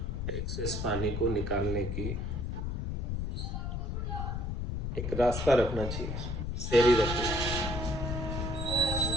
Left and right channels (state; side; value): noise; left; rumble, 2 dB below the sound